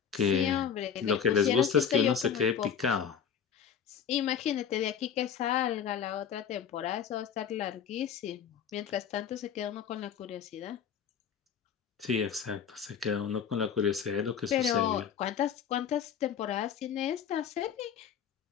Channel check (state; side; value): quieter; right; 7.7 dB